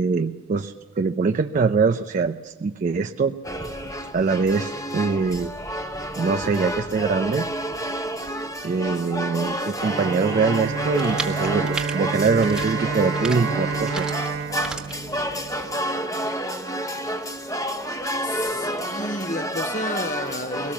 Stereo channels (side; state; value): left; quieter; 3.3 dB